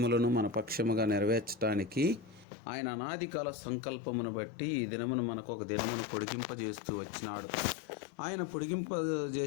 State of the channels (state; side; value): drops out; right; at 2.5 s